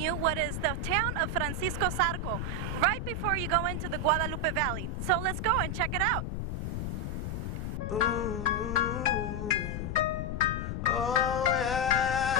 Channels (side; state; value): left; noise; rumble, 3 dB below the sound